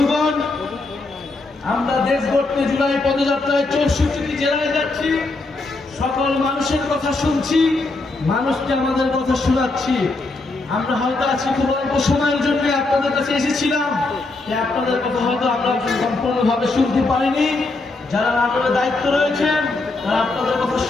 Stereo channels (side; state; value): right; quieter; 3.3 dB